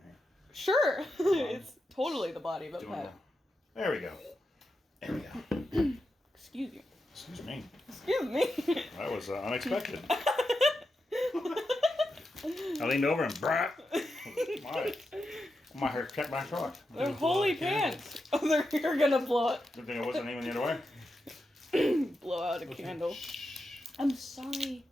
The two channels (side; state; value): both; normal; correlation 0.88